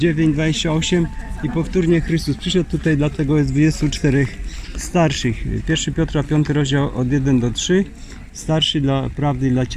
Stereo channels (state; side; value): identical; both; correlation 1.00